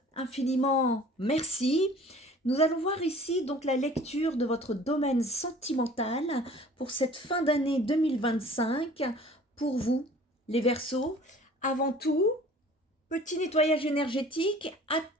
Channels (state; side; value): normal; both; correlation 0.48